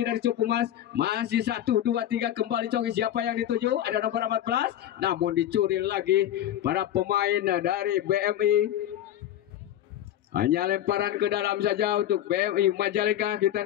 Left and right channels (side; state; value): right; quieter; 11.9 dB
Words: dari Cukumas. Masih 1, 2, 3. Kembali Coki. Siapa yang dituju? Ada nomor 14. Namun dicuri lagi para pemain dari BMI. Hanya lemparan ke dalam saja untuk BMI Majalengka. Kita